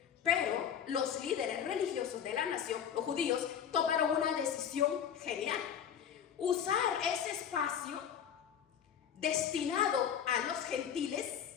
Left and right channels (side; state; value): right; quieter; 8.6 dB